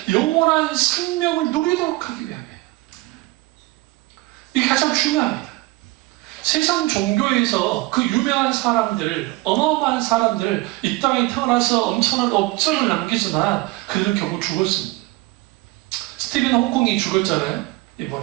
영원한 생명을 누리도록 하기 위함이에요. 이게 가장 중요합니다. 세상 종교에서 그 유명한 사람들, 어마어마한 사람들, 이 땅에 태어나서 엄청난 업적을 남기지만 그들은 결국 죽었습니다. 스티븐 호킹이 죽었잖아요.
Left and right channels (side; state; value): left; quieter; 20.5 dB